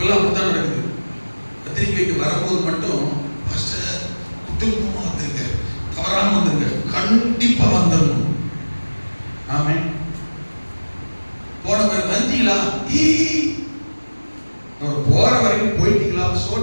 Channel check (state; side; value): inverted; both; correlation -1.00